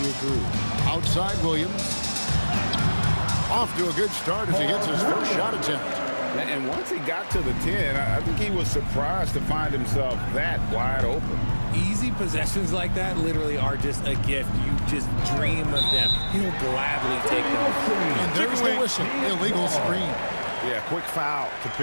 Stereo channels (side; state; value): both; inverted; correlation -1.00